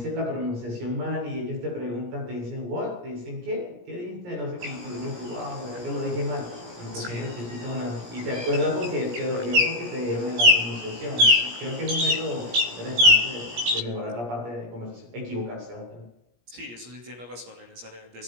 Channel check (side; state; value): left; late; 17 ms